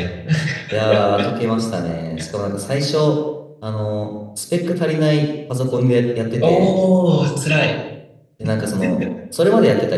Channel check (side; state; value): both; identical; correlation 1.00